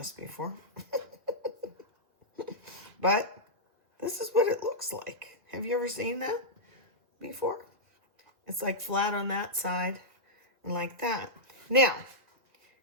before. But this is what it looks like. Have you ever seen that? before? It's like flat on that side and like that. Now,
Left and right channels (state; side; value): late; left; 2.0 ms